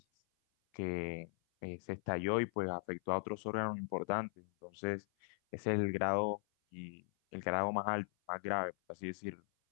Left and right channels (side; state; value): right; silent; 52 dB below the other